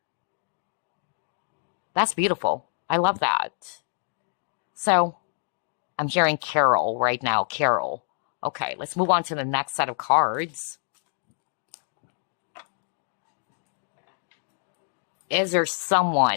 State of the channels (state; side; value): silent; right; digital silence